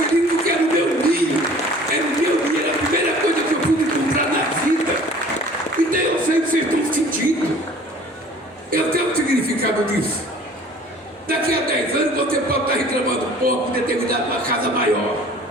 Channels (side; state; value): both; normal; correlation 0.48